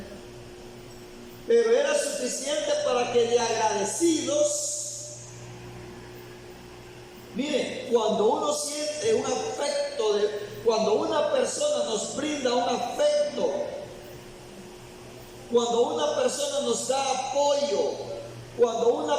pero era suficiente para que de agradecidos, mire, cuando uno siente un afecto, cuando una persona nos brinda un afecto, cuando una persona nos da apoyo, cuando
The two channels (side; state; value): both; identical; correlation 1.00